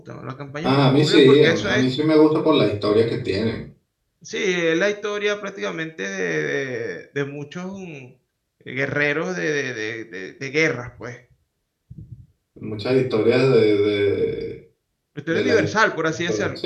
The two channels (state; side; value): identical; both; correlation 1.00